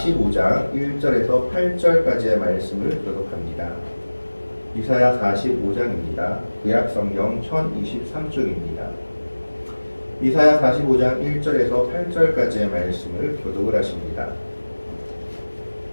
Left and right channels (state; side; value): inverted; both; correlation -1.00